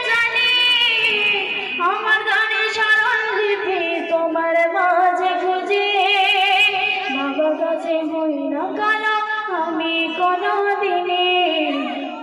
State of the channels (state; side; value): identical; both; correlation 1.00